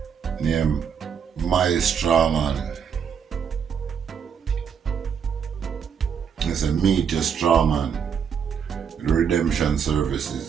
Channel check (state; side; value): quieter; left; 7.2 dB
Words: named My Strawman. It's a Meet Your Strawman redemption